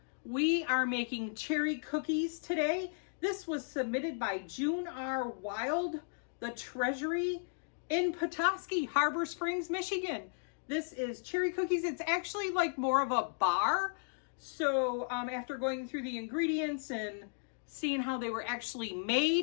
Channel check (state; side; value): silent; right; digital silence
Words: we are making cherry cookies today. This was submitted by June R. Wild, the Treasury in Petoskey, Harbor Springs, Michigan. This is cherry cookies. It's actually like more of a bar. So after going through the ingredients and seeing how they were actually